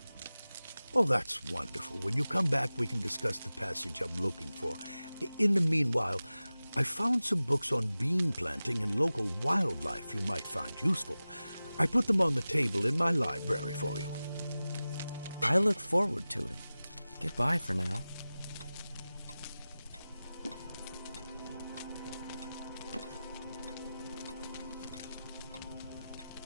Oh, that's wonderful. When you come back, we can discuss the passage I'm looking for. In the meanwhile, I found some books on bean planting and local wildlife you might find useful. I put them on the table in my library for you. I look forward to it. Goodbye for now.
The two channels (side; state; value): both; inverted; correlation -0.96